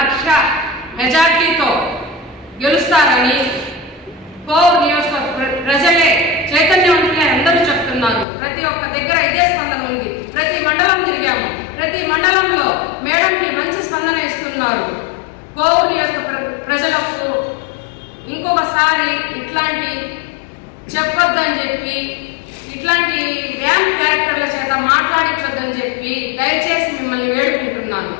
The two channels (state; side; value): drops out; right; at 8.2 s